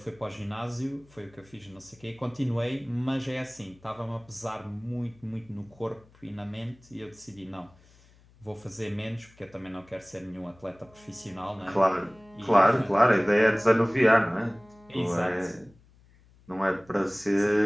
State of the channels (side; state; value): left; noise; hum, 28 dB below the sound